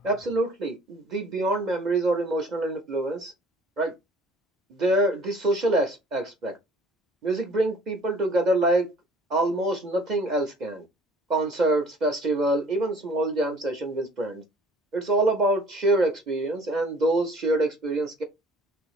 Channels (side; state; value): both; normal; correlation 0.52